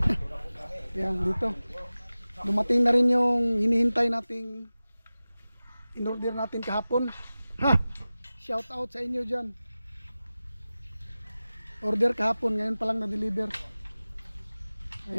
Yan, dito. Dumating na rin yung hinihintay nating in-order natin kahapon. Ha! Shout out sa inyo dyan. Order kahapon, ngayon pa lang na-deliver.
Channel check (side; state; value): both; inverted; correlation -0.96